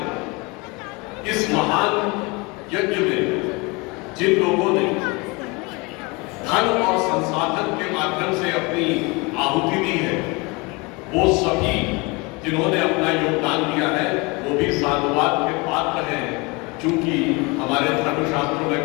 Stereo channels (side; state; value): right; quieter; 26.7 dB